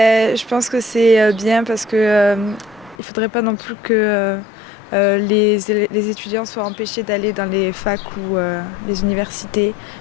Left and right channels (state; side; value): drops out; right; at 3.0 s